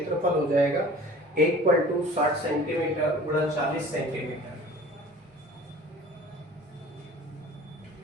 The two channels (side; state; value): both; normal; correlation 0.45